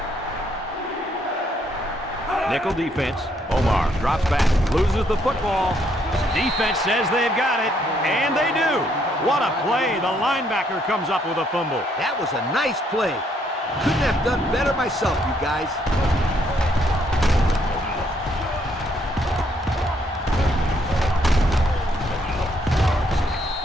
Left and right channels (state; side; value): normal; both; correlation 0.71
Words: Nickel defense. Omar drops back, loses the football. Defense says they've got it, and they do. What a play. The linebacker comes up with a fumble. That was a nice play. Couldn't have done better myself, you guys.